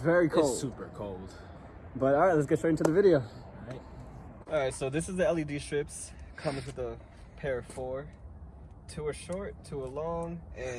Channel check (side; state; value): both; identical; correlation 1.00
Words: very cold. It's super cold. But alright, let's get straight into the video. Alright. Alright, so this is the LED strips. Comes with a pair of 4. 2 are short, 2 are long,